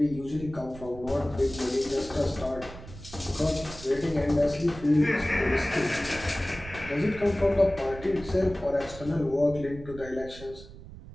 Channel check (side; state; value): right; noise; rumble, 15 dB below the sound